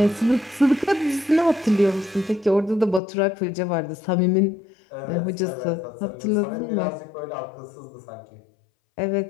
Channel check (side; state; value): right; drops out; at 3.0 s